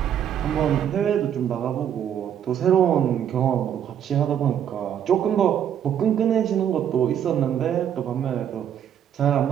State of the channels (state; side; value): quieter; left; 9.4 dB